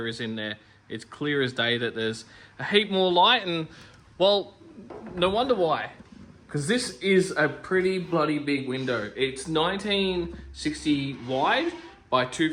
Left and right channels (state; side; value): identical; both; correlation 1.00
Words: is in there. It's clear as day that there's a heap more light, and well, no wonder why. because this is a pretty bloody big window. It's 1960 wide by